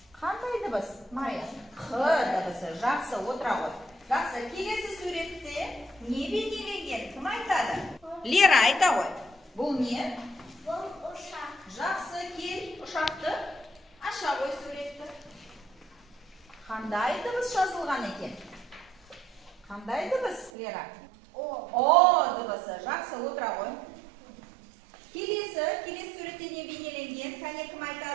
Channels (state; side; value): drops out; left; at 20.5 s